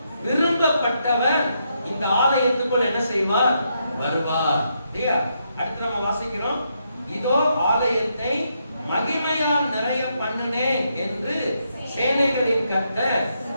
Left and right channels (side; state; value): both; inverted; correlation -0.79